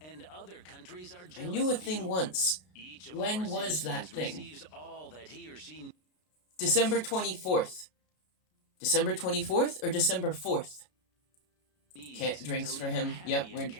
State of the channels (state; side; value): late; right; 32 ms